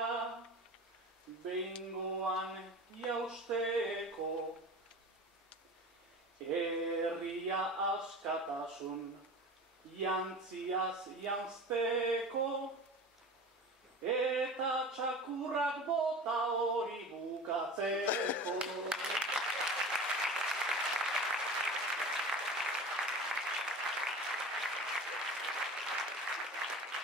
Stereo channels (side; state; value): both; normal; correlation 0.35